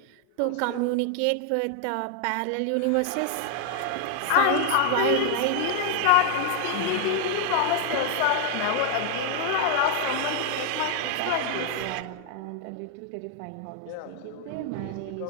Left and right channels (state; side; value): different; both; correlation 0.00